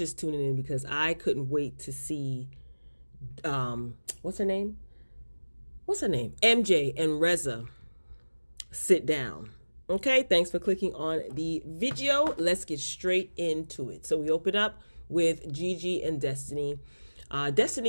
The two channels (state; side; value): inverted; both; correlation -1.00